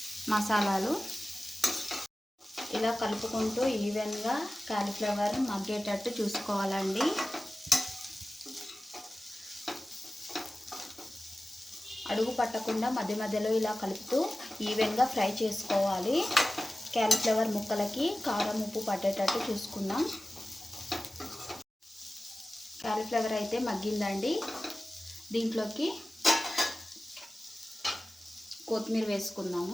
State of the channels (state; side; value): normal; both; correlation 0.95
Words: మసాలాలు ఇలా కలుపుకుంటూ ఈవెన్గా క్యాలీఫ్లవర్ మగ్గేటట్టు చూసుకోవాలండి. అడుగు పట్టకుండా మధ్య మధ్యలో ఇలా కలుపుతూ ఈవెన్గా ఫ్రై చేసుకోవాలి. క్యాలీఫ్లవర్ ముక్కలకి కారం, ఉప్పు పట్టేటట్టు చూసుకుందాం. క్యాలీఫ్లవర్ అయితే మగ్గిందండి. దీంట్లోకి కొత్తిమీర